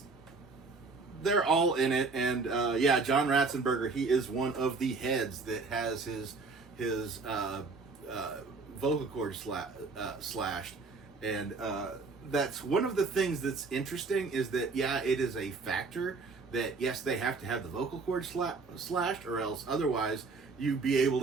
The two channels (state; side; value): quieter; left; 4.2 dB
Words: they're all in it. And, yeah, John Ratzenberger, he is one of the heads that has his vocal cord slashed. And, that's one of the things that's interesting is that, yeah, it is a factor that, yes, they have to have the vocal cord slashed, or else otherwise you'd be able